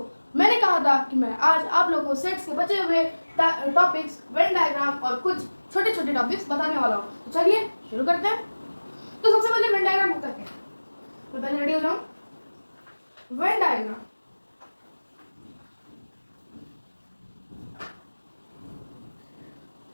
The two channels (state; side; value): inverted; both; correlation -1.00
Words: मैंने कहा था कि मैं आज आप लोगों को सेट्स के बचे हुए टॉपिक्स, वेन डायग्राम और कुछ छोटे छोटे टॉपिक्स बताने वाला हूँ. तो चलिए शुरू करते हैं. तो सबसे पहले वेन डायग्राम होता क्या है. मैं पहले रेडी हो जाऊँ. वेन डायग्राम